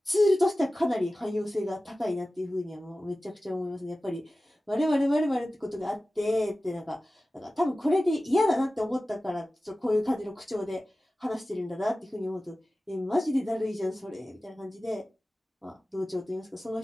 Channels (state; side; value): normal; both; correlation 0.96